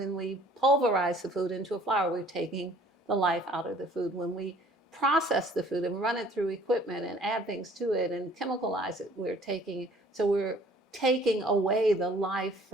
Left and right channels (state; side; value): normal; both; correlation 0.54